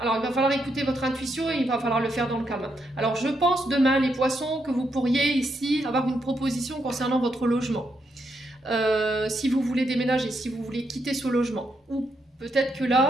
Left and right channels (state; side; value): normal; both; correlation 0.80